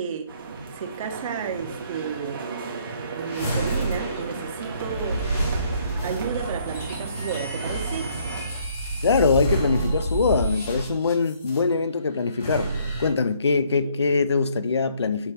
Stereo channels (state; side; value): inverted; both; correlation -0.65